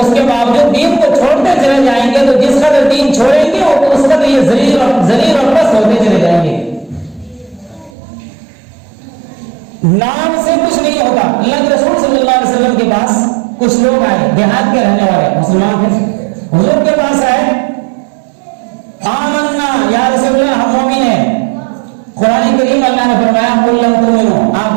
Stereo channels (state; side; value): drops out; left; at 8.0 s